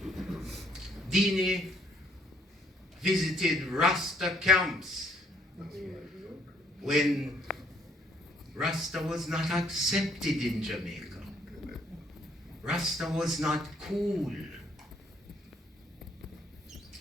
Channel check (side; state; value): both; normal; correlation 0.65